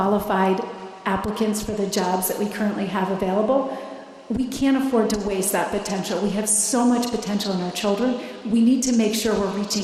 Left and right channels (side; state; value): both; identical; correlation 1.00